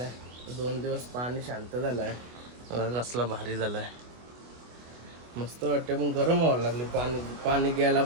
2 दिवस पाणी शांत झालाय. कसला भारी झालाय, मस्त वाटते. पण गरम व्हायला लागले. पाणी घ्यायला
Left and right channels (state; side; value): late; left; 25 ms